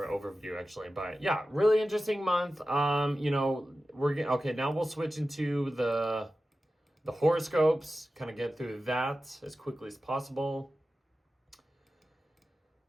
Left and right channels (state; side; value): normal; both; correlation 0.94